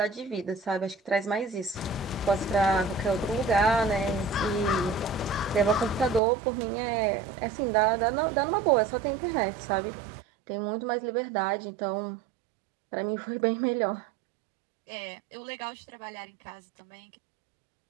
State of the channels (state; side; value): drops out; left; at 6.2 s